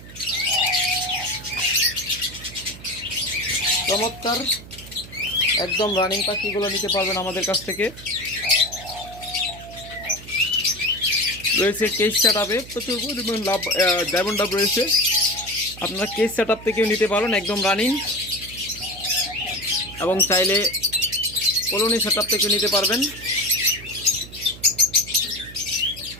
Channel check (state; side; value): noise; right; hum, 16 dB below the sound